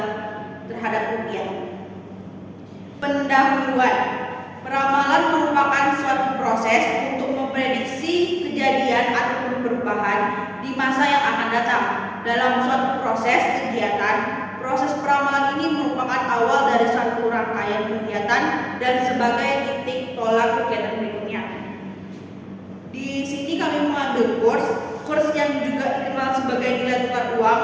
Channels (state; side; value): identical; both; correlation 1.00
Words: terhadap rupiah. Pendahuluan. Peramalan merupakan suatu proses untuk memprediksi kejadian ataupun perubahan di masa yang akan datang. Dalam suatu proses kegiatan, proses peramalan ini merupakan awal dari suatu rangkaian kegiatan dan sebagai titik tolak kegiatan berikutnya. Di sini kami mengambil kurs yang juga dikenal sebagai nilai tukar uang